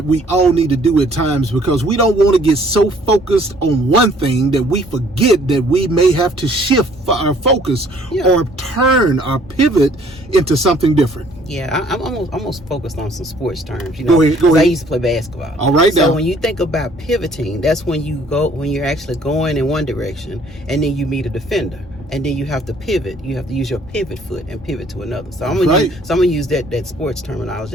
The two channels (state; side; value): normal; both; correlation 0.59